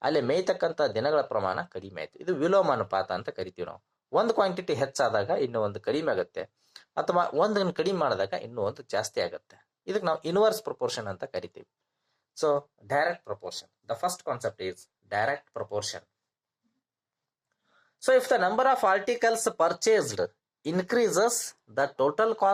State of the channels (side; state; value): both; identical; correlation 1.00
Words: ಅಲ್ಲಿ ಮೇಯ್ತಕ್ಕಂಥ ದಿನಗಳ ಪ್ರಮಾಣ ಕಡಿಮೆ ಆಯಿತು. ಇದು ವಿಲೋಮ ಅನುಪಾತ ಅಂತ ಕರಿತೀವಿ ನಾವು. ಒಂದು ಕ್ವಾಂಟಿಟಿ ಹೆಚ್ಚಾದಾಗ ಇನ್ನೂ ಒಂದು ಕಡಿಮೆ ಆಗುತ್ತೆ, ಅಥವಾ ಒಂದನ್ನು ಕಡಿಮೆ ಮಾಡಿದಾಗ ಇನ್ನೂ ಒಂದು ಜಾಸ್ತಿ ಆಗುತ್ತೆ. ಇದಕ್ಕೆ ನಾವು ಇನ್ವರ್ಸ್ ಪ್ರಪೋರ್ಷನ್ ಅಂತ ಕರಿತೀವಿ. So direct proportion, the first concept is direct proportion. So if the number of articles purchased increases, the total